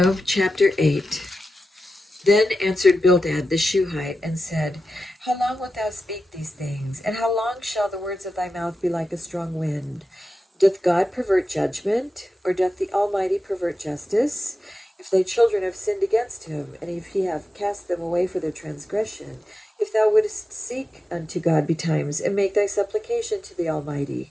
chapter 8. Then answered Bildad the Shuhite and said, How long wilt thou speak these things? And how long shall the words of thy mouth be like a strong wind? Doth God pervert judgment? Or doth the Almighty pervert justice? If thy children have sinned against him, and if he have cast them away for their transgression, if thou wouldest seek unto God betimes, and make thy supplication to the Almighty,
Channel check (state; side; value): normal; both; correlation 0.92